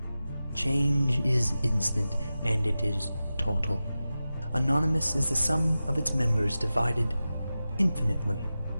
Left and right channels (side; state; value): both; inverted; correlation -0.94